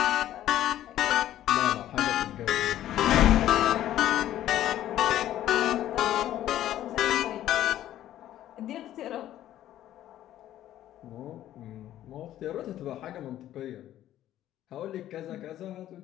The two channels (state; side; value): quieter; right; 12.7 dB